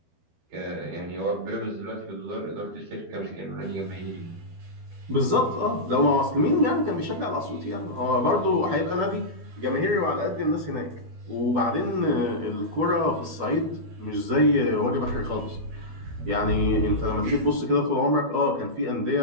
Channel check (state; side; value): late; left; 12 ms